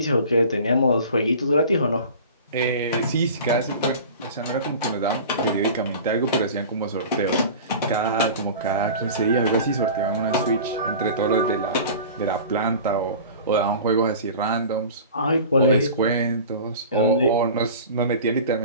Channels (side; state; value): both; inverted; correlation -0.39